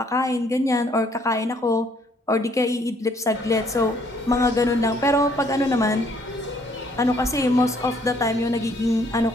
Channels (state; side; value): normal; both; correlation 0.64